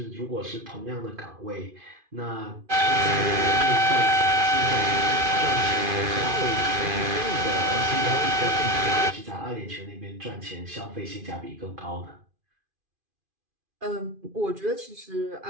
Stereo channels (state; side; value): late; left; 2.5 ms